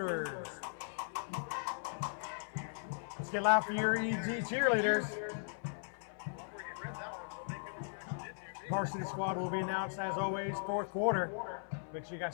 Let's get loud for your EG cheerleaders. Varsity squad will be announced, as always, fourth quarter. Make sure you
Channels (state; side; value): silent; right; 52 dB below the other